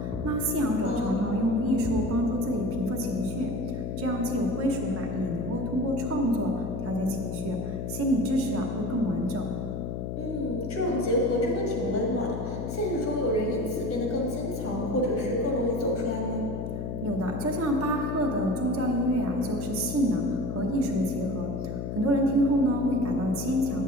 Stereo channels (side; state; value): left; noise; hum, 4 dB below the sound